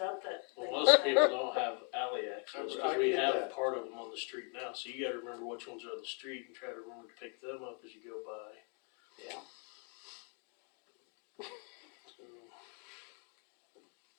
up that. Well, most people don't have alley access, I cause we get have that. part of them on the street now, so you gotta remember which ones are on the street and try to remember to pick them up as you go by. Yeah. So,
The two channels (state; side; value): quieter; right; 39.5 dB